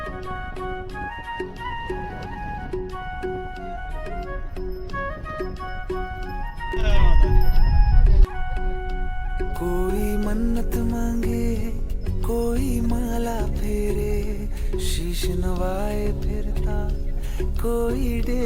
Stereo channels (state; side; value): identical; both; correlation 1.00